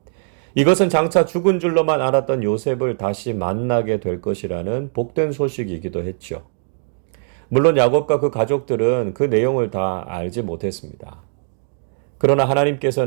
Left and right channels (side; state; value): left; silent; digital silence